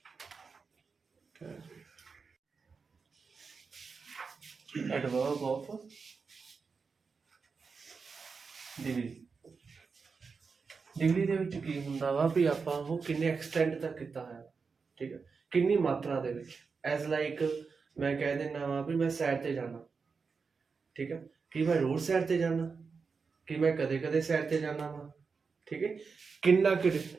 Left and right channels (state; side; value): quieter; left; 5.0 dB